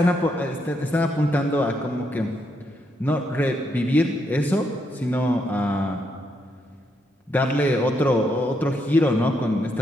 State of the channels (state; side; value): normal; both; correlation 0.78